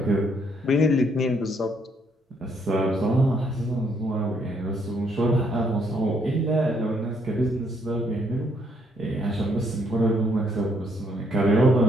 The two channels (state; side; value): normal; both; correlation 0.70